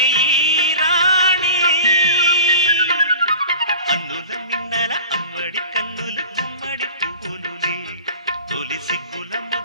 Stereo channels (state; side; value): inverted; both; correlation -0.39